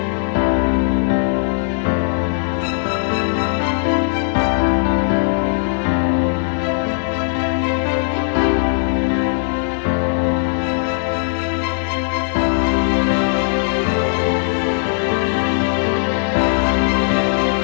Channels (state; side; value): silent; right; digital silence